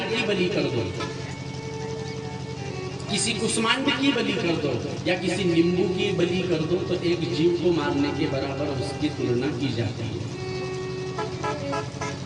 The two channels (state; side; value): noise; left; rumble, 29 dB below the sound